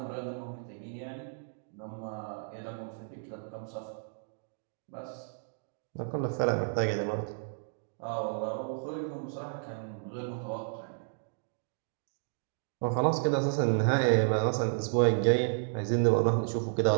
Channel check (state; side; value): silent; left; digital silence